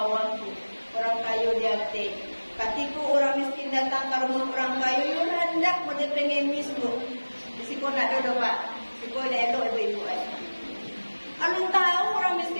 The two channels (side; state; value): both; inverted; correlation -1.00